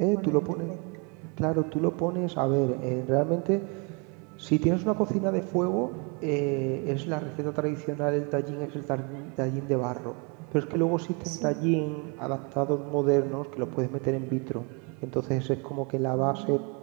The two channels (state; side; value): quieter; left; 32.7 dB